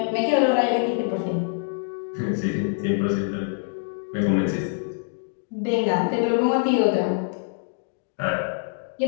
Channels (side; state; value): right; silent; digital silence